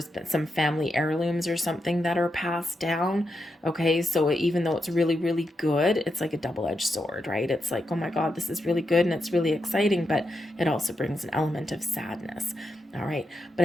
been some family heirlooms or something that are passed down. Okay, so even though it's really, really good, it's like a double-edged sword, right? It's like, oh my God, this is really good and it's really exciting, but it also brings an element of sadness. All right, but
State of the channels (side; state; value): both; normal; correlation 0.85